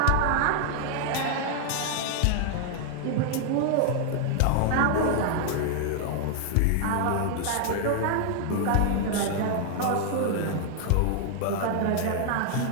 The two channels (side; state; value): both; different; correlation 0.00